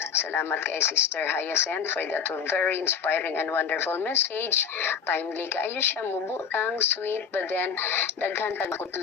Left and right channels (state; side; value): quieter; right; 6.8 dB